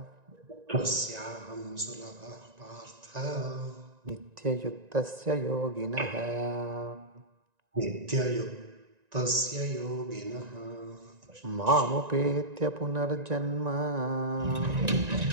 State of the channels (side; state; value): left; late; 1.9 ms